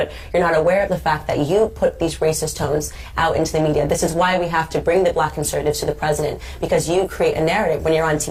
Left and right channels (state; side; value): identical; both; correlation 1.00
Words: you're not aware of the fact that you put these racist tones out into the media. This is why we have to bring the black conservatives to the president, because you create a narrative when you're on